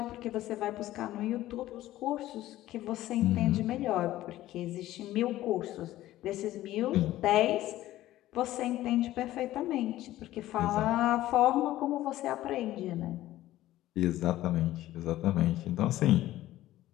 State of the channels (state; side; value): quieter; right; 15.0 dB